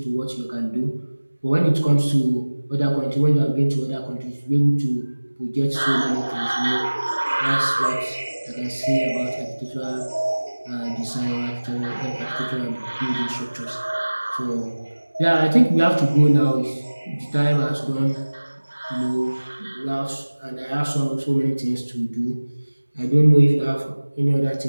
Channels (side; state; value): both; inverted; correlation -1.00